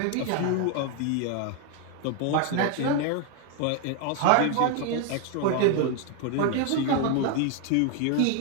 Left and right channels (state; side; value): different; both; correlation 0.01